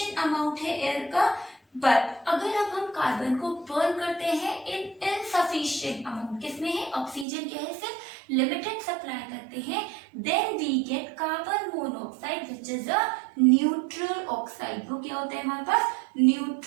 अमाउंट है एयर का, बट अगर अब हम कार्बन को बर्न करते हैं इन इनसफिशिएंट अमाउंट, किसमें है? ऑक्सीजन क्या है? सिर्फ लिमिटेड सप्लाई करते हैं, then we get carbon monoxide which is a neutral oxide. वो क्या होता है हमारे पास?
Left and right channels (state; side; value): drops out; left; at 7.2 s